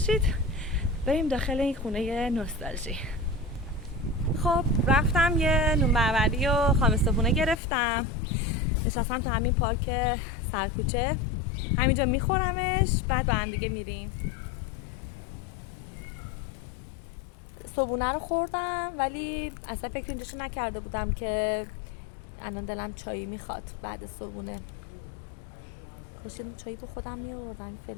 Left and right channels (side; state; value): right; drops out; at 7.6 s